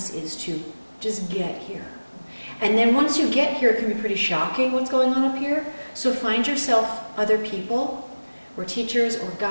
is to just get here. And then once you get here, it can be pretty shocking what's going on up here. So find yourself other people, or teachers, or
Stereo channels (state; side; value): inverted; both; correlation -1.00